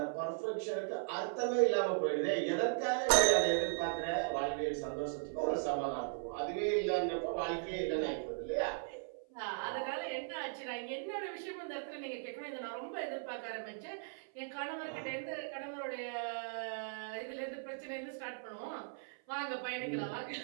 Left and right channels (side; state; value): left; silent; 53 dB below the other